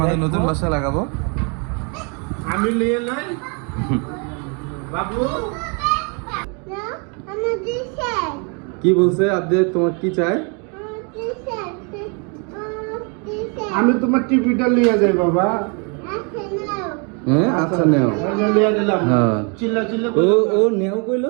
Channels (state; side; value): quieter; left; 35.5 dB